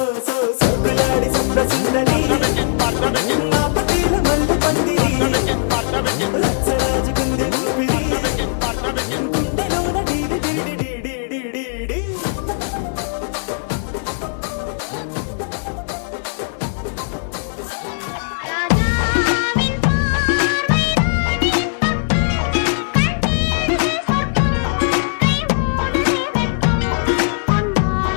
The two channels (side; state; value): right; silent; digital silence